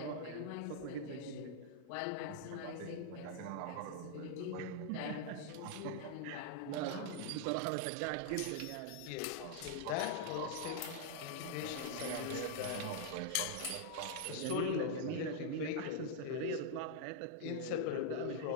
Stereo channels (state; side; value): different; both; correlation -0.01